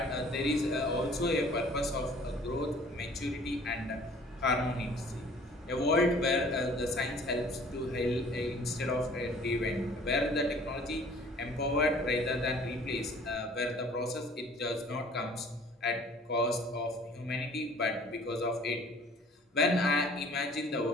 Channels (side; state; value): both; normal; correlation 0.52